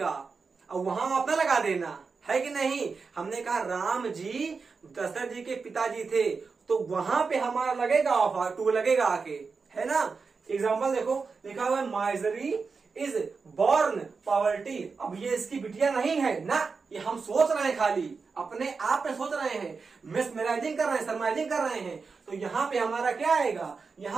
और वहां अपना लगा देना है कि नहीं। हमने कहा राम जी दशरथ जी के पिताजी थे, तो वहां पे हमारा लगेगा ऑफ, टू लगेगा आके, है ना। एग्जाम्पल देखो, लिखा हुआ है माइजरी इज बॉर्न पॉवर्टी। अब ये इसकी बिटिया नहीं है ना, ये हम सोच रहे हैं, खाली अपने आप में सोच रहे हैं, मिसमराइजिंग कर रहे हैं, सरमाइजिंग कर रहे हैं। तो यहाँ पे हमारा क्या आएगा,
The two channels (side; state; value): left; quieter; 4.8 dB